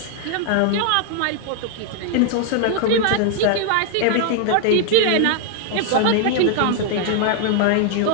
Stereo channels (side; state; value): both; different; correlation 0.00